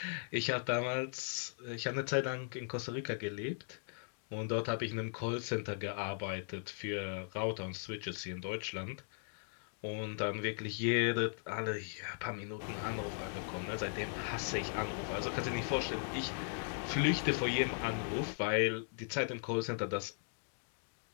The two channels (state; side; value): silent; right; digital silence